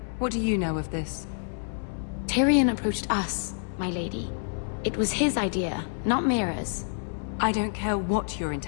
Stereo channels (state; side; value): silent; right; 59 dB below the other